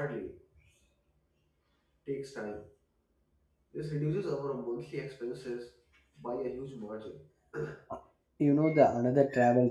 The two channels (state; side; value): identical; both; correlation 1.00